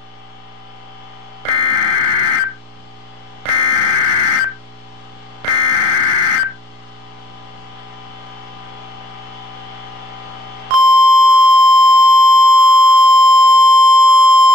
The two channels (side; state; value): left; late; 33 ms